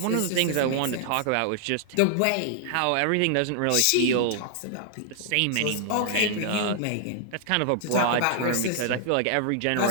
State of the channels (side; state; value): both; different; correlation 0.00